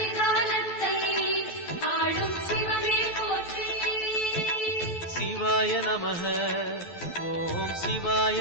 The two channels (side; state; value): right; late; 12 ms